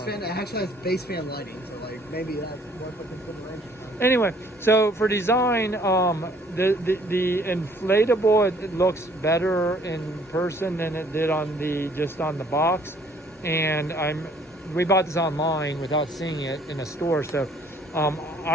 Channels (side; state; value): both; normal; correlation 0.59